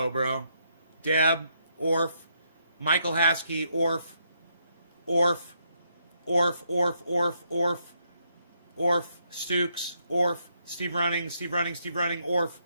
bro. Deb, Orf, Michael Haskey, Orf, Stukes, Orf, Steve Running, Orf,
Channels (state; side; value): inverted; both; correlation -0.76